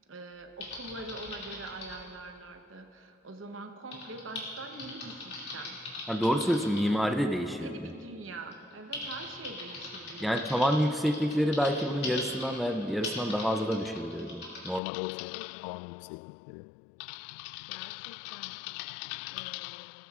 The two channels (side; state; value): right; drops out; at 14.8 s